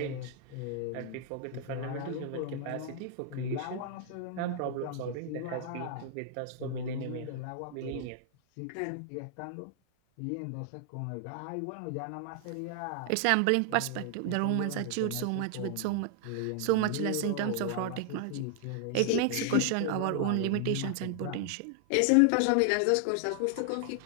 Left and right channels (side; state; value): both; different; correlation 0.00